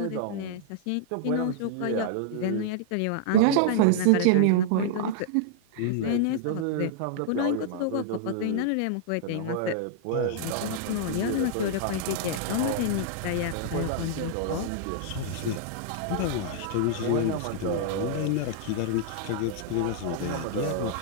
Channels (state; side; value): different; both; correlation -0.01